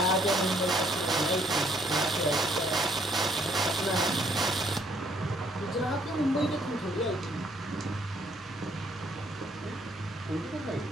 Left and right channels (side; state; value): both; normal; correlation 0.66